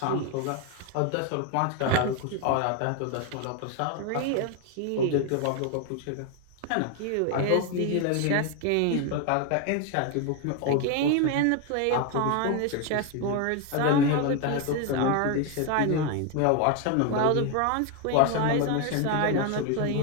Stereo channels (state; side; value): different; both; correlation 0.01